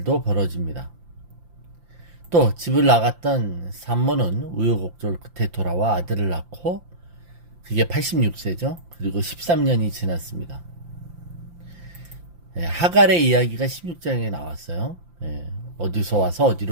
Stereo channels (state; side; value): late; left; 5.8 ms